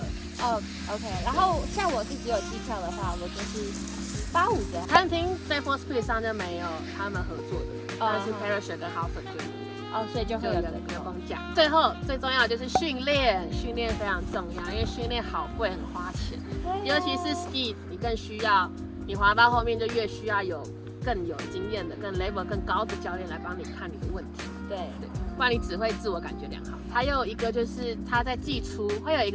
OK。然后像我自己有机票的话，我就是85折。餐厅在 Falls Creek 上就没有他们合作的，但是 Parachute 跟 Halford 就有。所以就会有员工价。最后最重要的就是训练非常重要，因为训练好贵，很花钱。尤其是 ski， 你更需要，你滑到后面就越需要更有经验的、更 level 更高的教练来帮你看你的问题。对，不然你只会自我感觉良好。还有一个就是他在季初会有一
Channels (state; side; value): identical; both; correlation 1.00